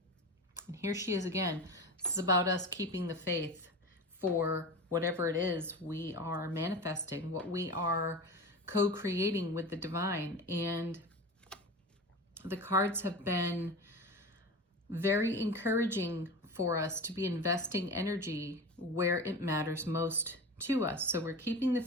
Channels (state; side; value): normal; both; correlation 0.29